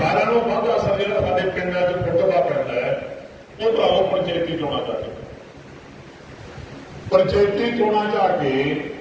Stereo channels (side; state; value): both; identical; correlation 1.00